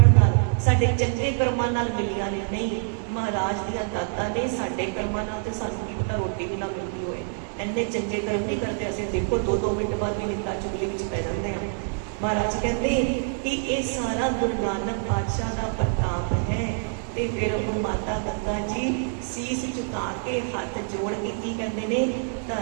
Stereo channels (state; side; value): silent; left; 61 dB below the other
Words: ਨਾਲ, ਸਾਡੇ ਚੰਗੇ ਕਰਮਾਂ ਨਾਲ ਮਿਲੀਆਂ ਨੇ। ਨਹੀਂ, ਮਹਾਰਾਜ ਦੀਆਂ ਦਾਤਾਂ ਨੇ। ਸਾਡੇ ਕਰਮਾਂ ਨਾਲ ਤੇ ਸਾਨੂੰ ਕੀ ਪਤਾ ਰੋਟੀ ਵੀ ਨਾ ਮਿਲਦੀ ਹੋਏ, ਇੰਨੇ ਚੰਗੇ ਕਰਮ ਨਹੀਂ ਕਰਦੇ ਅਸੀਂ। ਦੇਖੋ 2-2 ਮਿੰਟ ਬਾਅਦ ਵੀ ਨਿੰਦਾ ਚੁਗਲੀ ਵਿੱਚ ਪੈ ਜਾਂਦੇ ਹਾਂ। ਮਹਾਰਾਜ ਕਹਿੰਦੇ ਕਿ ਇਹ ਸਾਰਾ ਗੁਰੂ ਨਾਨਕ ਪਾਤਸ਼ਾਹ ਦਾ ਪ੍ਰਤਾਪ ਹੈ। ਤੇ ਫਿਰ ਉਹ ਮਾਤਾ ਗੰਗਾ ਜੀ ਸੀਸ ਝੁਕਾ ਕੇ ਹੱਥ ਜੋੜ ਕੇ ਕੀ ਕਹਿੰਦੇ ਨੇ,